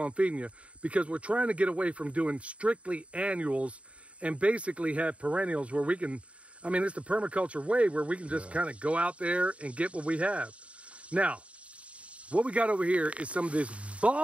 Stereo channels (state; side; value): late; left; 0.063 ms